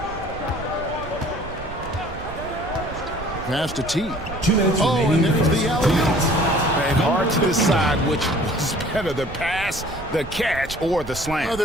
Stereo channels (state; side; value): noise; right; rumble, 13 dB below the sound